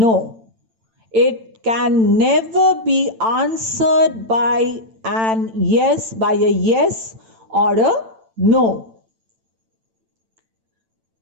It can never be answered by a yes or a no.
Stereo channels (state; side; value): late; left; 8.9 ms